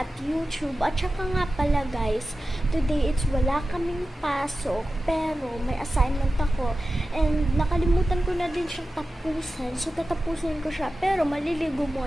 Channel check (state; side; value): normal; both; correlation 0.94